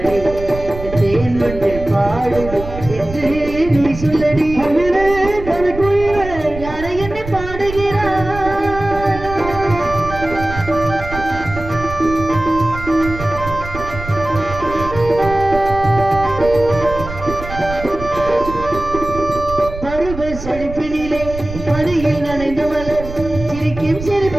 தேன் வந்து பாடுது என்று நீ சொல்லடி. குயிலே கவி குயிலே யாரை என்னை பாடுகிறாய். பருவ செழிப்பினிலே பணியில் நனைந்து மலர் சிரிக்கும்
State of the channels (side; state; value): right; noise; rumble, 11 dB below the sound